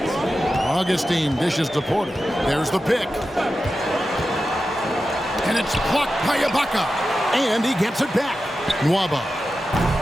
Augustine dishes to Porter. There's the pick. And it's blocked by Ibaka. And he gets it back. Nwaba.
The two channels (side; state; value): both; normal; correlation 0.92